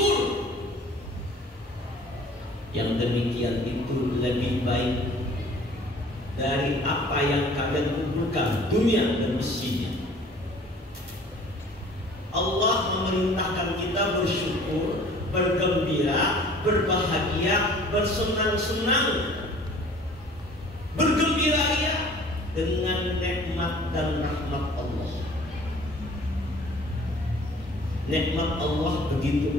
Yang demikian itu lebih baik dari apa yang kalian kumpulkan dunia dan isinya. Allah memerintahkan kita bersyukur, bergembira, berbahagia, bersenang-senang, bergembira ya dengan nikmat dan rahmat Allah. Nikmat Allah begitu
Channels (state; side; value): normal; both; correlation 0.50